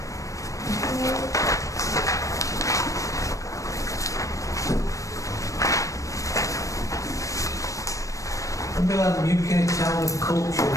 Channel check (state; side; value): late; right; 0.16 ms